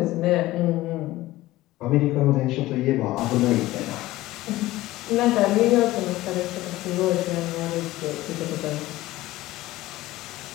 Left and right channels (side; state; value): right; quieter; 17.2 dB